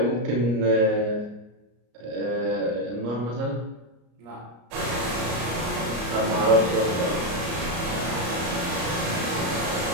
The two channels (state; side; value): late; left; 34 ms